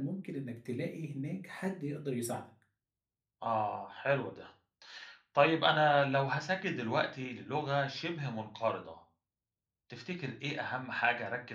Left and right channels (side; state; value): both; identical; correlation 1.00